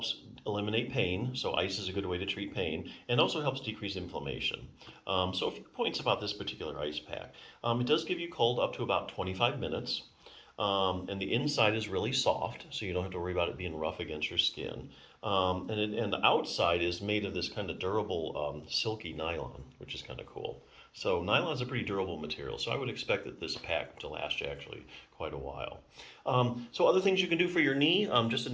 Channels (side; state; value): both; identical; correlation 1.00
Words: eliminate pain. So ice is a good way to treat pain, and also helps decrease inflammation. So a few points about this particular ice pack. It does give you cold up to about 25 minutes. And the inside is really soft, so you don't have to worry about it being rough against your skin. And the outside is made of this kind of durable, silky nylon, which is kind of cool. So nylon is a pretty durable material, so I would expect that this pack to last you actually quite a while. So other things you can do for your knee, just an